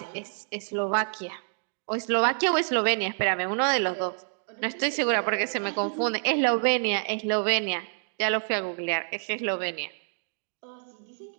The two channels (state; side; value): silent; left; digital silence